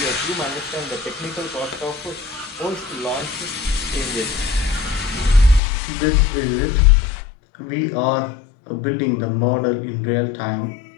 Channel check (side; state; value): right; drops out; at 5.6 s